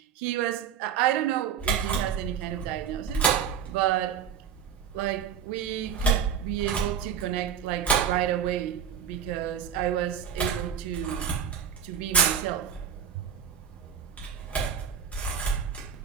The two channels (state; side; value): quieter; left; 7.9 dB